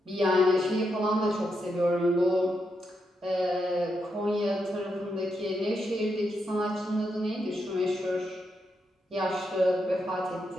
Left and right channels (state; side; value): normal; both; correlation 0.82